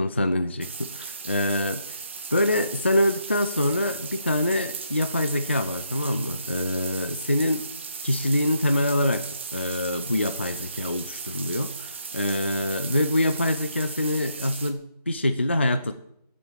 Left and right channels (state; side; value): inverted; both; correlation -0.76